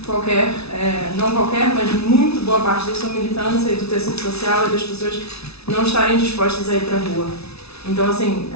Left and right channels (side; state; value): right; late; 0.79 ms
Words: não qualquer, mas muito boa parte da sua militância e do tecido social e das pessoas não estarem dispostas a ir para a rua. Então, assim,